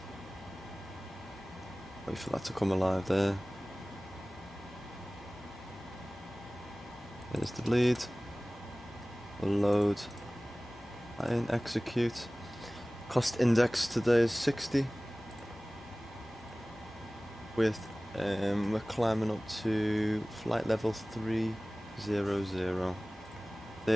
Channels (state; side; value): normal; both; correlation 0.98